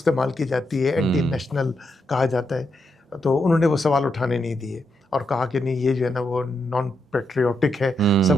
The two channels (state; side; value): normal; both; correlation 0.82